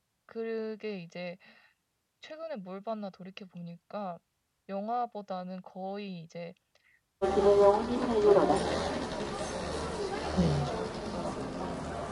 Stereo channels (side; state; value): both; identical; correlation 1.00